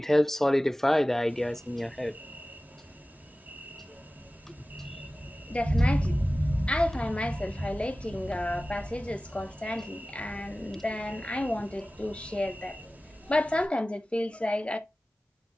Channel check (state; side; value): normal; both; correlation 0.96